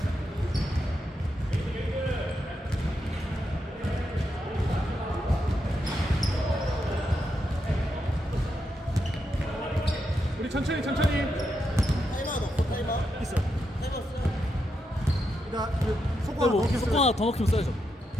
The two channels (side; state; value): both; normal; correlation 0.84